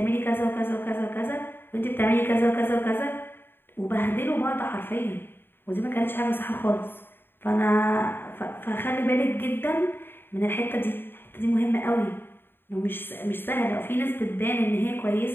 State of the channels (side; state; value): right; late; 0.10 ms